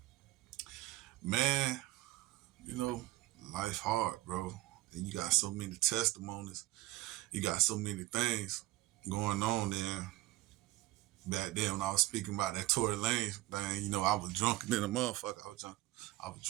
man, you know, life hard, bro, and you got so many testimonies. You got so many things going on there. Back then, when I was speaking about that Tory Lanez, man, I was drunk than a motherfucker. I was drunk. I was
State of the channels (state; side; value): quieter; left; 17.7 dB